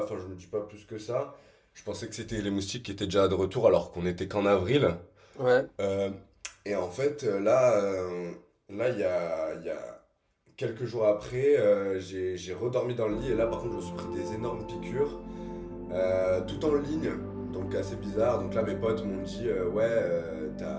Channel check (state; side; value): identical; both; correlation 1.00